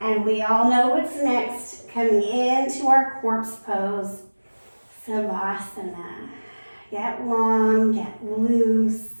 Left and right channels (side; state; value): both; inverted; correlation -1.00